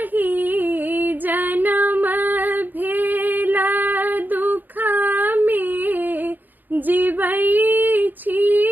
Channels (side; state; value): left; late; 0.087 ms